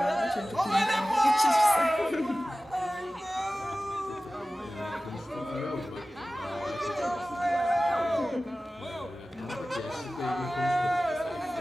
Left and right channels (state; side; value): normal; both; correlation 0.96